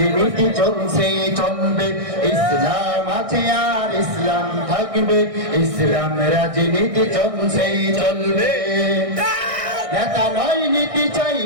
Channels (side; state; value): left; late; 1.6 ms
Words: চলছে চলবে। ইসলাম আছে আর ইসলাম থাকবে, ইসলাম রাজনীতি চলছে চলবে। নেতা নয় নীতি চাই,